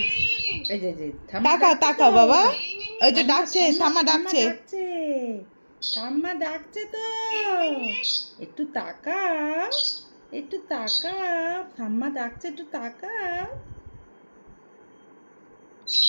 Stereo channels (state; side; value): inverted; both; correlation -1.00